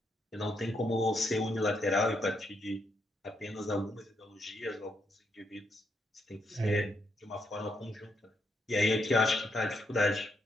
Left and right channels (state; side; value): normal; both; correlation 0.78